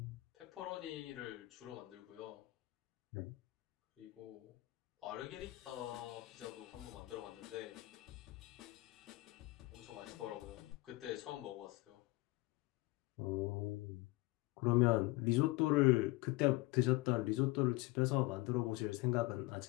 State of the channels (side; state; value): right; quieter; 21.4 dB